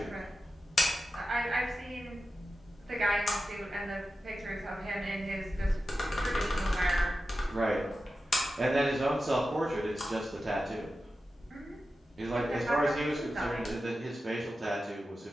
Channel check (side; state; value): both; normal; correlation 0.92